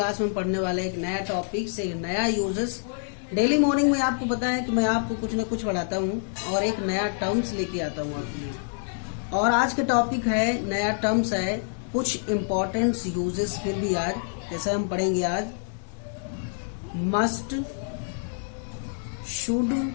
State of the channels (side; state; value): right; silent; 59 dB below the other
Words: में पढ़ने वाले एक नया टॉपिक से नया यूजेस। डेली मॉर्निंग में आपको पता है कि मैं आपको कुछ न कुछ पढ़ाता हूँ और एक नया टर्म्स लेके आता हूँ आपके लिए। और आज का टॉपिक है, नया टर्म्स है कुछ इम्पोर्टेंट यूजेस। फिर भी आज जैसे हम पढ़ेंगे आज मस्ट, शुड